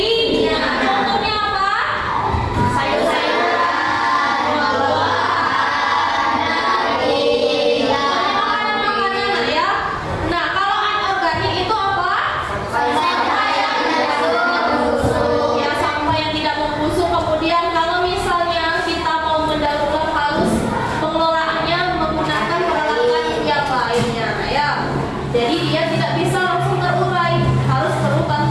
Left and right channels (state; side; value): identical; both; correlation 1.00